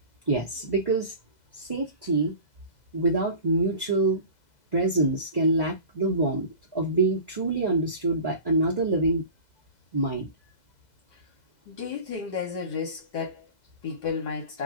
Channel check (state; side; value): late; right; 2.0 ms